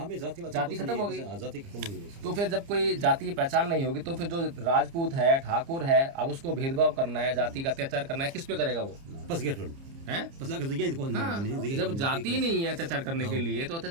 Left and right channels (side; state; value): left; late; 30 ms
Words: जाति खत्म हो गई। तो फिर जब कोई जाति की पहचान नहीं होगी तो फिर जो राजपूत है, ठाकुर है, अब उसको भेदभाव करना है, जाति का अत्याचार करना है, किस पे करेगा वो? है? जब जाति नहीं है अत्याचार करने के लिए तो